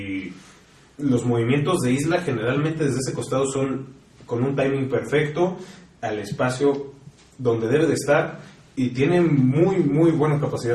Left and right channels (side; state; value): both; identical; correlation 1.00